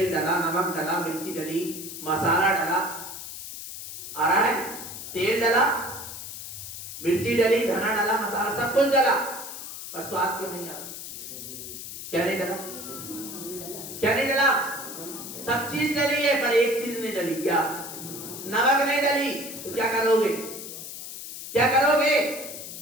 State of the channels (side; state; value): left; noise; hiss, 10 dB below the sound